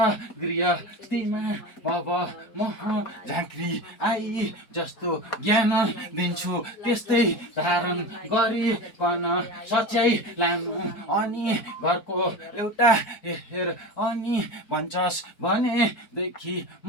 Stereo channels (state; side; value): late; right; 4.5 ms